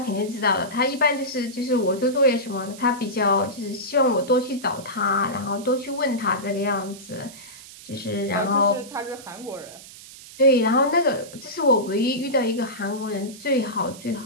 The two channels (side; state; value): right; noise; hiss, 17 dB below the sound